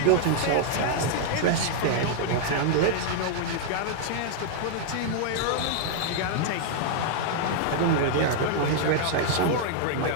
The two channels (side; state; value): both; different; correlation -0.01